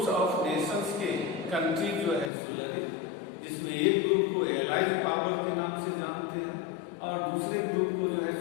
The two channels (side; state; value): right; drops out; at 2.3 s